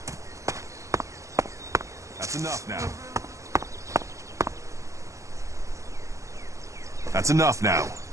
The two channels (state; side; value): late; left; 0.15 ms